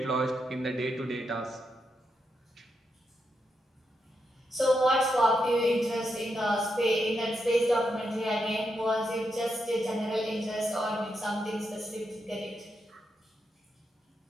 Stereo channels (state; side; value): normal; both; correlation 0.84